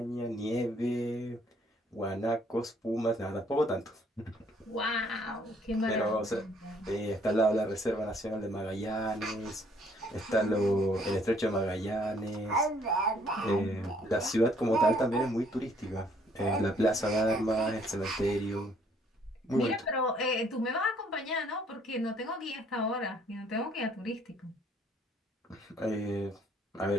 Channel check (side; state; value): both; normal; correlation 0.64